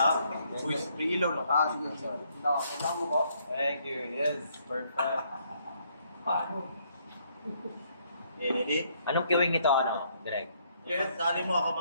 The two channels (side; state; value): both; inverted; correlation -0.69